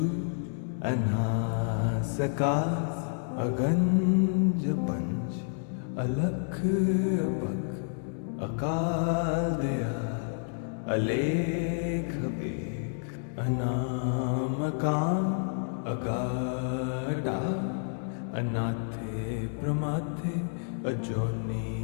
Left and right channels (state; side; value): silent; right; digital silence